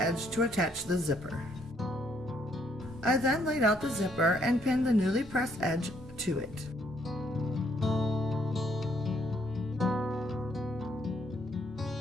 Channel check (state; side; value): normal; both; correlation 0.69